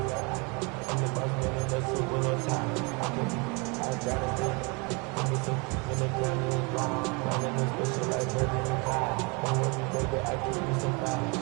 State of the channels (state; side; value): quieter; left; 30.3 dB